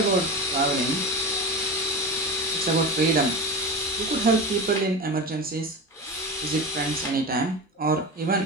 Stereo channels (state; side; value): normal; both; correlation 0.25